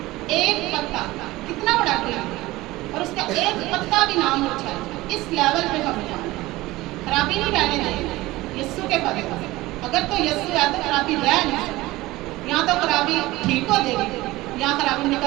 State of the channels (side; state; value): left; quieter; 18.8 dB